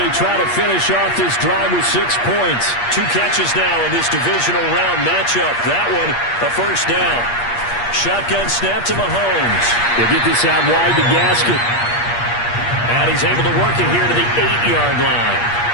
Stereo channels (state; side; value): late; right; 8.5 ms